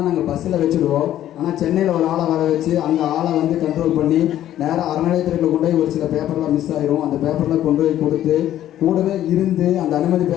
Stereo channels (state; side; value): quieter; right; 12.3 dB